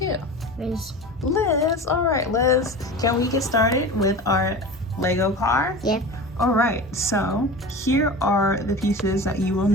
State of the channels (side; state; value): both; normal; correlation 0.33